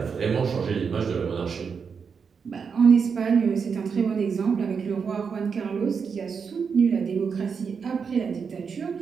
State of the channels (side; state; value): left; quieter; 6.0 dB